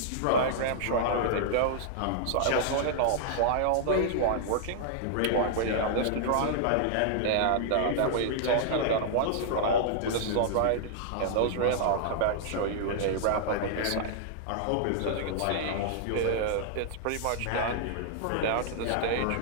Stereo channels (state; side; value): different; both; correlation -0.01